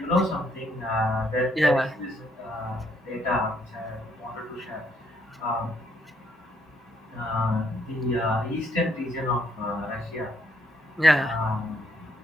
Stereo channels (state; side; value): normal; both; correlation 0.71